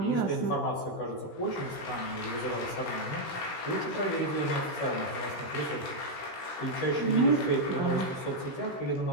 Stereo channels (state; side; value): late; right; 16 ms